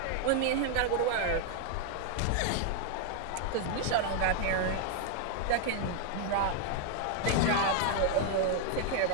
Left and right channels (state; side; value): different; both; correlation 0.00